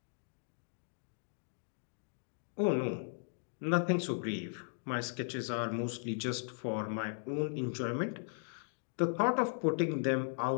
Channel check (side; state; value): right; silent; digital silence